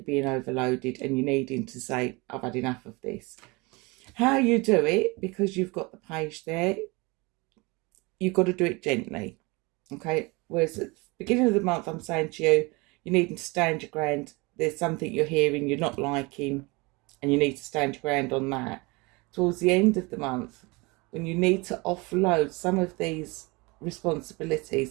being overloaded and you needing to say, I've had enough of this. How you do it, because you've got the page there, you've got to do it gently. Okay? Whereas at the beginning of the month, I'm saying to you, you need to stand your ground. There's something you're hearing you're not liking, and you need to stand your ground on that. Towards the end of the month, when you need to offload some of these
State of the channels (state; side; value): quieter; left; 26.0 dB